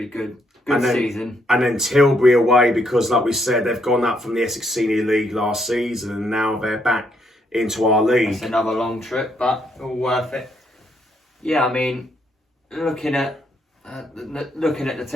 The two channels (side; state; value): both; normal; correlation 0.74